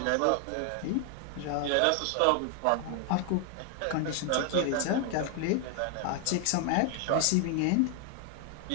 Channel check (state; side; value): different; both; correlation 0.00